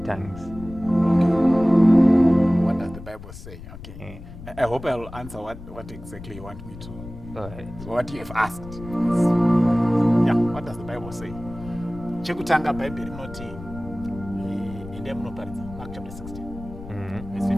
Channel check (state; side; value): noise; left; rumble, 14 dB below the sound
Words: tongues? Okay. What does the Bible say? Okay. I hope I'll answer what exactly you want me to. All right. What you have asked. Yeah, what does the Bible say? Chekutanga Bible rinoti ende munoparidza Mark chapter 16. Verse